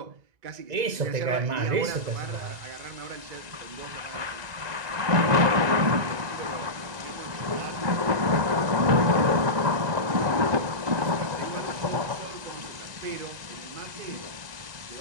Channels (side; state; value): left; late; 1.9 ms